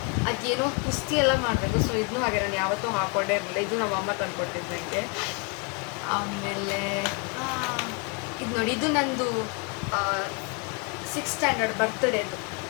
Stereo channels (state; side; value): quieter; right; 32.8 dB